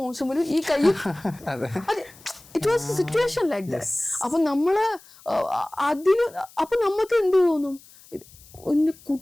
മോശമലും ഈ കൈയും it was situation like that. അപ്പൊ നമ്മള് അപ്പൊ നമുക്ക് എന്ത് തോന്നും,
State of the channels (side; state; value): left; noise; hiss, 24 dB below the sound